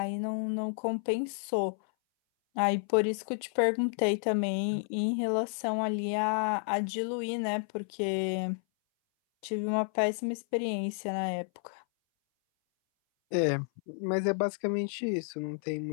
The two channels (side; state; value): right; silent; 57 dB below the other